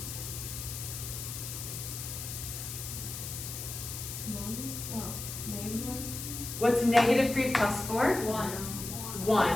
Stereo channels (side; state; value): left; noise; hiss, 7 dB below the sound